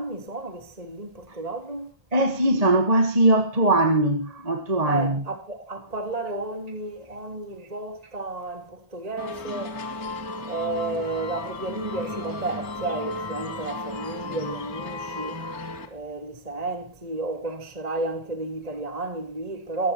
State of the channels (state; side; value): late; left; 1.8 ms